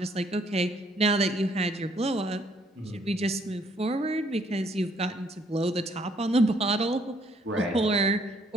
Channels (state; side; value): normal; both; correlation 0.66